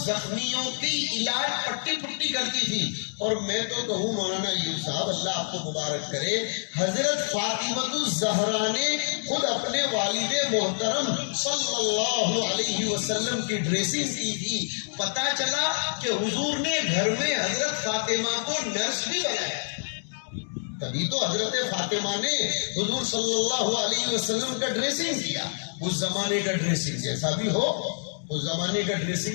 کی علاج پٹی پٹی کرتی تھی۔ اور میں تو کہوں مولانا ایوب صاحب اللہ آپ کو مبارک کرے، حضرت فاطمہ الزہرا نے خود اپنے والد محترم صلی اللہ علیہ وسلم کی ڈریسنگ کی تھی۔ پتہ چلا کہ حضور نے گھر میں حضرت فاطمہ کو نرس بھی بنایا، تبھی تو حضرت فاطمہ نے حضور صلی اللہ علیہ وسلم کا ڈریسنگ کیا۔ اس زمانے کا ڈریسنگ جیسا بھی ہو، اس زمانے کا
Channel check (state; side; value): silent; right; 60 dB below the other